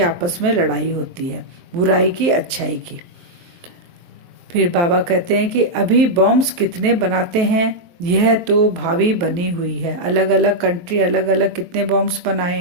आपस में लड़ाई होती है, बुराई की अच्छाई की। फिर बाबा कहते हैं कि अभी बॉम्ब्स कितने बनाते हैं, यह तो भावी बनी हुई है। अलग अलग कंट्री अलग अलग कितने बॉम्ब्स बनाए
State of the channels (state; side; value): late; left; 23 ms